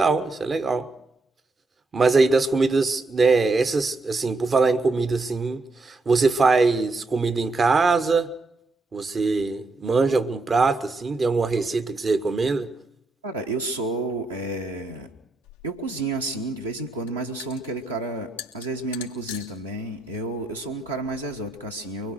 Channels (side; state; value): left; quieter; 3.3 dB